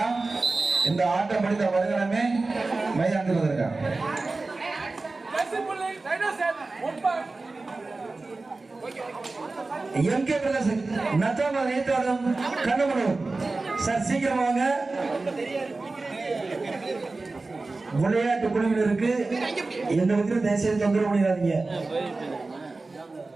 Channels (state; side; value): quieter; left; 3.5 dB